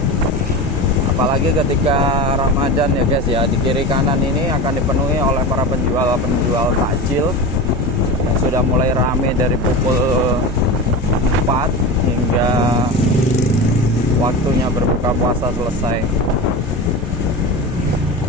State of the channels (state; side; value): normal; both; correlation 0.26